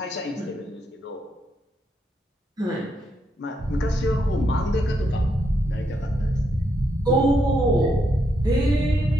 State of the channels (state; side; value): normal; both; correlation 0.79